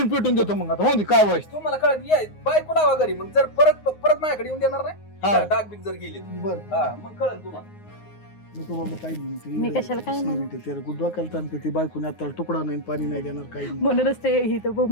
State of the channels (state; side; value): late; right; 9.6 ms